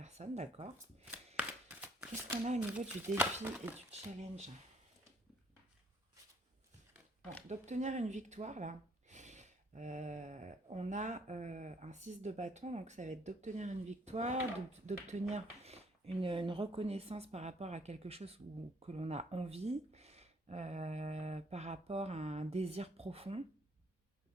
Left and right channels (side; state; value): both; normal; correlation 0.63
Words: d'accord. Qu'est-ce qu'on a au niveau du défi et du challenge? Bon, d'obtenir une victoire, là, on a un 6 de bâton, donc ça va être d'obtenir une victoire, d'obtenir une reconnaissance par rapport à quelque chose que l'on a envie, par rapport à un désir profond.